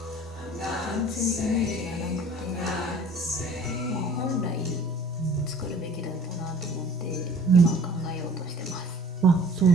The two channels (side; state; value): both; normal; correlation 0.49